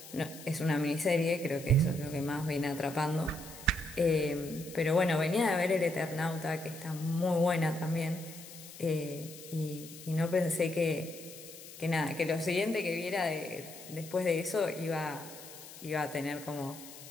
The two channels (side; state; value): left; noise; hiss, 15 dB below the sound